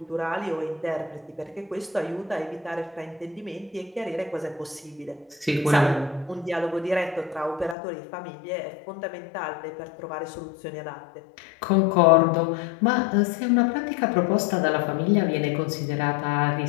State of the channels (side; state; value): right; drops out; at 7.8 s